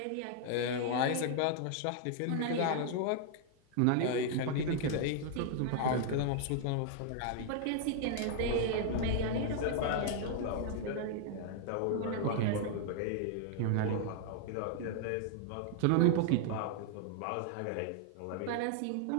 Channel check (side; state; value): both; different; correlation 0.00